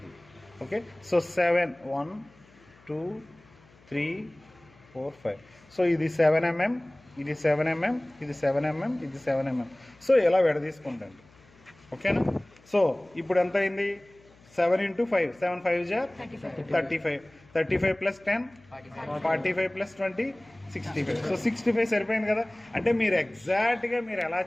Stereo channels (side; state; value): left; noise; hum, 28 dB below the sound